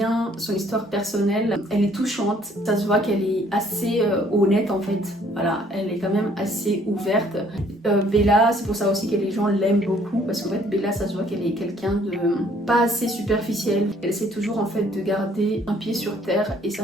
son histoire personnelle, elle est touchante, ça se voit qu'elle est assez honnête en fait, voilà, elle est quand même assez ouverte. Bella, c'est pour ça aussi que les gens l'aiment beaucoup, parce qu'en fait Bella ça se voit qu'elle est quelqu'un de pas assez superficiel, elle essaie toujours en fait de garder un pied sur terre et ça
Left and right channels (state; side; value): normal; both; correlation 0.61